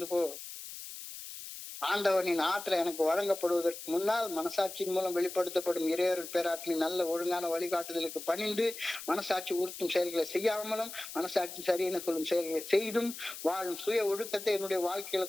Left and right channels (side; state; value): left; noise; hiss, 11 dB below the sound